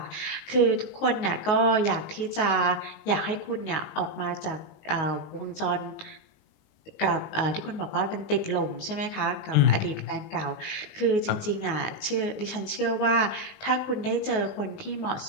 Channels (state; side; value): late; right; 19 ms